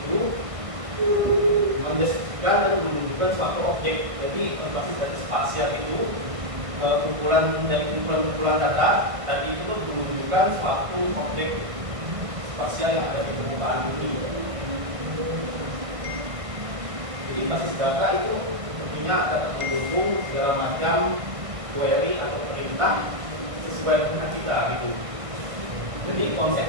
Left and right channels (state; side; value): late; left; 1.6 ms